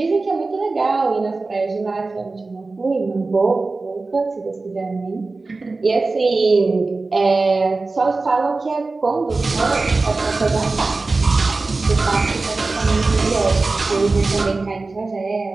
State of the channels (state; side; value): quieter; left; 3.6 dB